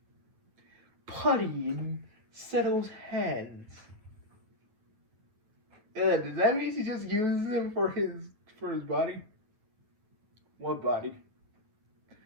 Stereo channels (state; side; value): late; left; 9.3 ms